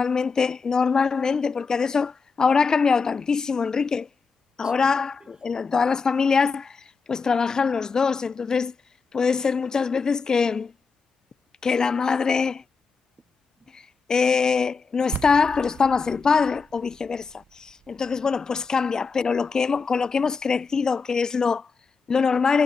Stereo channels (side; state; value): right; quieter; 5.0 dB